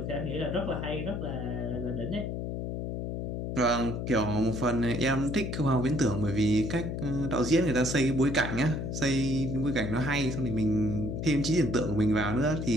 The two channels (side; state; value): left; noise; hum, 4 dB below the sound